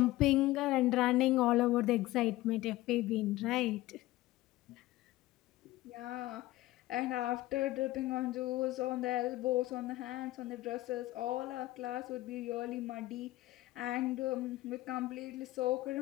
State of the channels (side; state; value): right; quieter; 17.3 dB